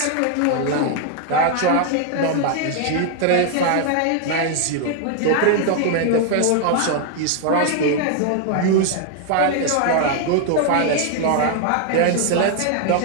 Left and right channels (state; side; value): different; both; correlation 0.00